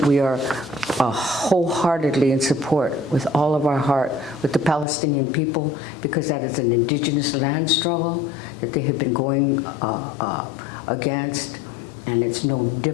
we are wholeheartedly in support with all of our heart with the Palestinian people, because that is an indigenous land struggle that they have been going against, and it's no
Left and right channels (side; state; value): right; drops out; at 4.9 s